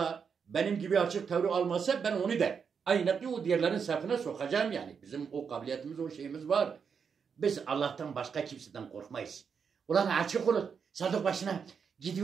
benim gibi açık tavır almazsa ben onu da aynı o diğerlerin safına sokacağım yani. Bizim o kabiliyetimiz, o şeyimiz var. Biz Allah'tan başka kimseden korkmayız. Ulan açık olun. Sadık başına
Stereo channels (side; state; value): left; quieter; 6.4 dB